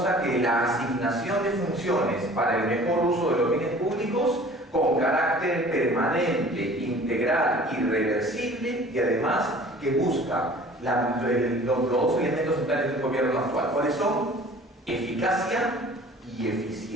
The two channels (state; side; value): normal; both; correlation 0.47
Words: que la asignación de funciones para el mejor uso de los bienes públicos con carácter permanente, integral, irreversible y además que busca los dos elementos centrales del gobierno actual. ¿Cuáles son? Eficacia y